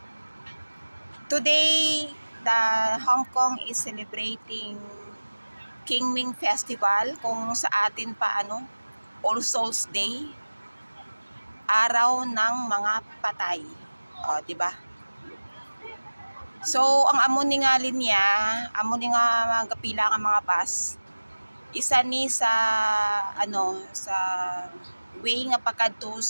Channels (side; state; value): both; inverted; correlation -1.00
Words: Today, the Hong Kong is celebrating Qingming Festival, kung sa atin pa All Souls Day. Araw ng mga patay. Di ba? So, ang amo ni nga linya, amo ni nga magapila nga mga bus. Isa ni sa sa way nga pakadto